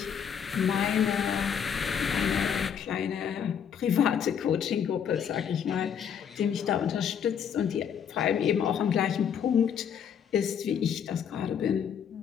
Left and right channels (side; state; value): right; quieter; 8.0 dB